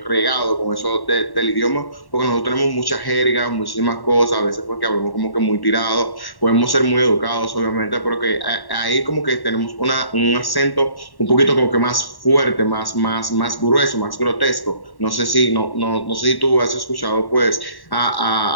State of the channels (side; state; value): right; late; 1.1 ms